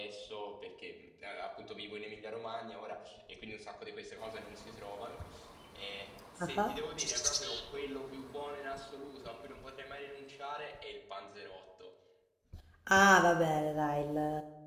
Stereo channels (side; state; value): both; identical; correlation 1.00